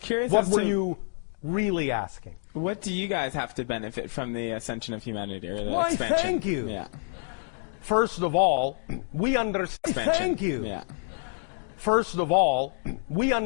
What as were to you really asking? what do you guys have to benefit from the ascension of humanity or the Why, expansion? thank you. Yeah. First of all, we understand. Thank you. Yeah. First of all, we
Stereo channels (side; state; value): right; silent; digital silence